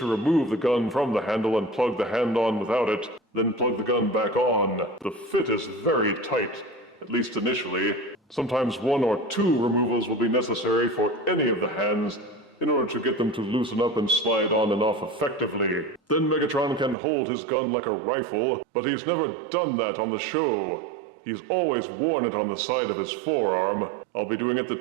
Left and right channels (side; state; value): left; drops out; at 16.9 s